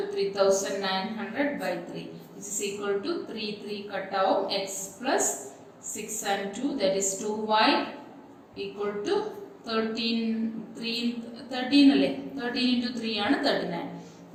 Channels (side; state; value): both; identical; correlation 1.00